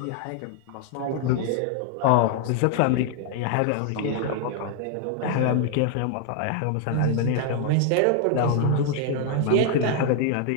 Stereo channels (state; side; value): different; both; correlation 0.00